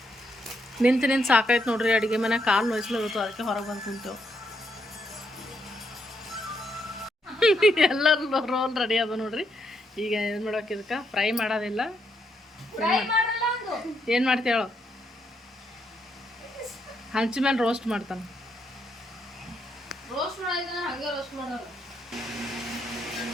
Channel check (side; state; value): both; normal; correlation 0.77